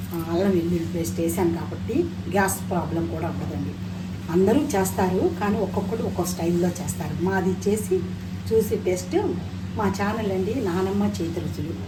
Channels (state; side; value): identical; both; correlation 1.00